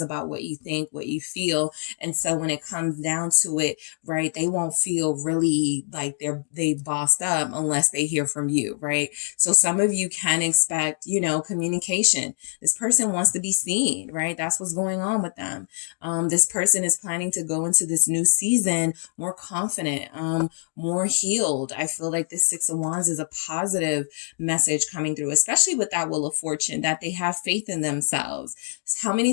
about what you think, what you feel. And so when it comes down to it, right, they won't feel really like they bossed up unless they hear from you, right? So some of you can expect, communication. This person wants to be seen, right? That's what's going on with them. This person is planning to go into this new season more confident, more healed. I feel like this Six of Wands is a positive message coming through, especially with that Wheel of Fortune, that they have faith in themselves. How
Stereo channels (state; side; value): silent; right; digital silence